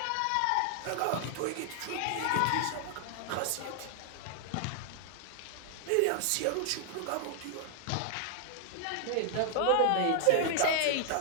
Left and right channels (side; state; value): both; different; correlation 0.00